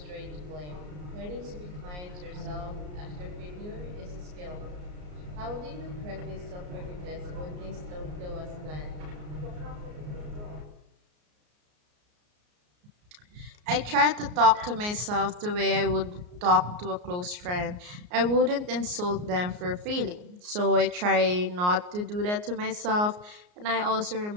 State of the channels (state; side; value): late; left; 34 ms